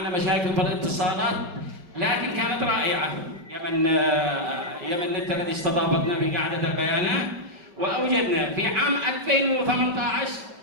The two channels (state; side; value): late; left; 5.5 ms